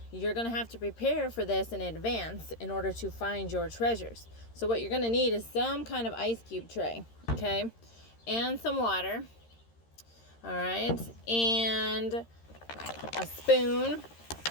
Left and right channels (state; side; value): late; right; 13 ms